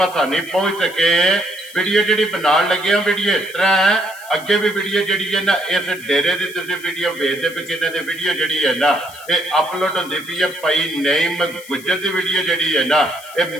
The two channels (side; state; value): left; noise; hiss, 19 dB below the sound